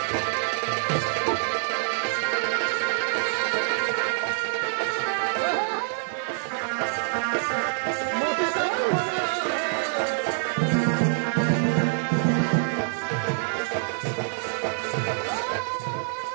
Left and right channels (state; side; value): silent; left; digital silence